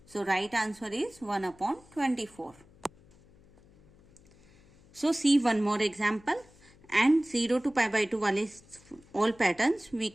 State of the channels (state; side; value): noise; left; hum, 27 dB below the sound